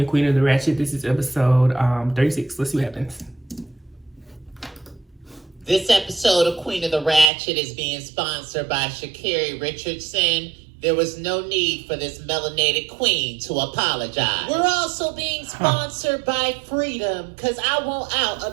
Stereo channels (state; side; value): drops out; left; at 7.3 s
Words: Queen of the Ratchet. This is episode 36. Let's see what happens. This episode of Queen of the Ratchet is being sponsored by Sha'Carri Richardson. There was no need for this melanated queen to apologize. We're also being sponsored by Freedom, because I want out